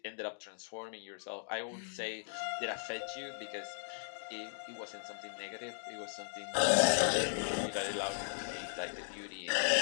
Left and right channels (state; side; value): silent; right; digital silence